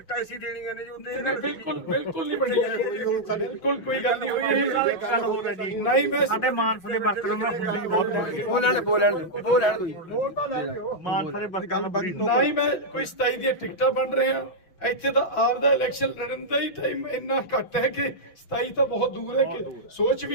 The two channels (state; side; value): late; right; 6.0 ms